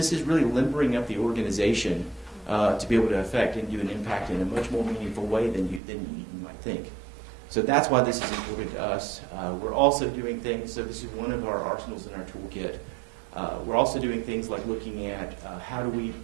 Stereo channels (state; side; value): drops out; left; at 5.8 s